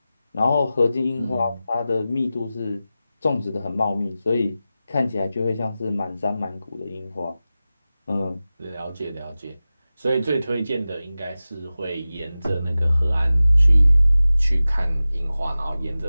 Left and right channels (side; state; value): both; inverted; correlation -0.95